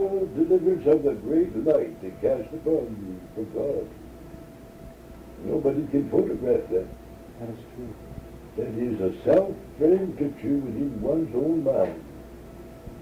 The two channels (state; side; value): identical; both; correlation 1.00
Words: deliverance of the great light that cast upon you from God. Nobody can photograph that. That is true. That is a self-framed picture within one's own mind